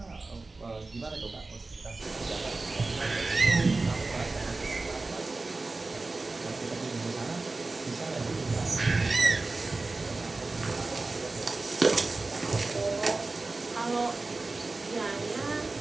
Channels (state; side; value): quieter; left; 3.5 dB